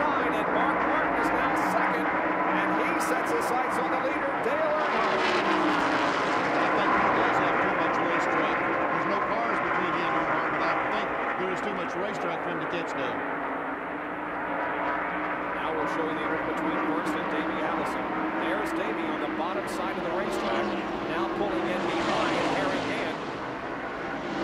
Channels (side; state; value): both; identical; correlation 1.00